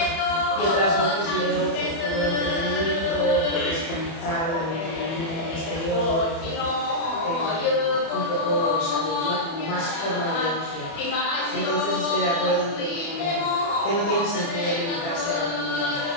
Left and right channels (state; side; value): late; right; 30 ms